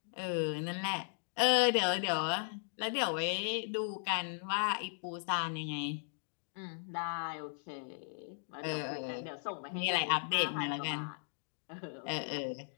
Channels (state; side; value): silent; right; digital silence